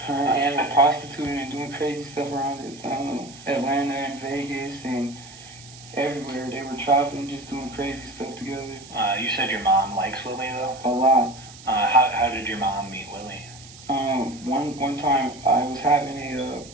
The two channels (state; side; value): noise; right; hiss, 19 dB below the sound